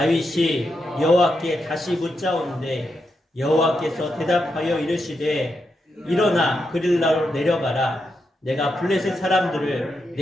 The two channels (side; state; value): both; normal; correlation 0.84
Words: 여호와께 다시 묻자온데 여호와께서 대답하여 이르시되 일어나 그릴라로 내려가라. 내가 블레셋 사람들을